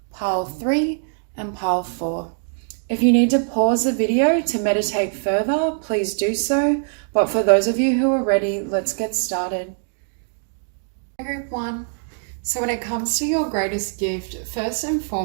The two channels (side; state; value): left; silent; digital silence